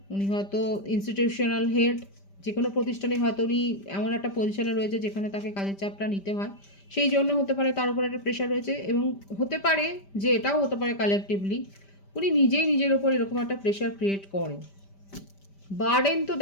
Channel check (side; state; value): right; late; 5.1 ms